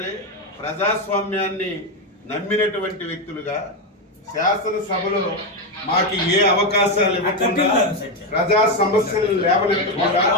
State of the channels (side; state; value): both; normal; correlation 0.08